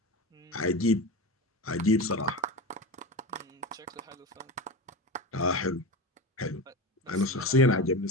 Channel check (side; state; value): both; normal; correlation 0.24